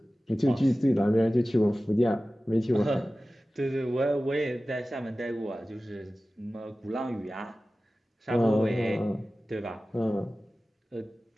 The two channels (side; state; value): both; normal; correlation 0.96